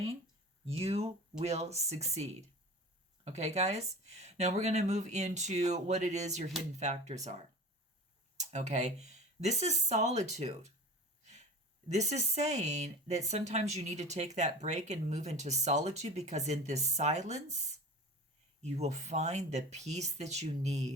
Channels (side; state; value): both; normal; correlation 0.36